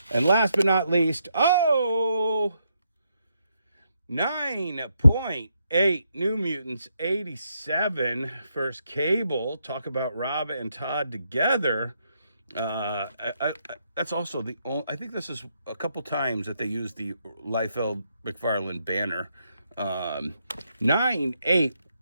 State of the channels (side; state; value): both; inverted; correlation -0.79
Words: And last but not least, 9.8 New Mutants 87 first Cable. Talk about Rob and Todd together. That's also the only, I think this is a couple times that they use the Liefeld McFarlane banner. 9/8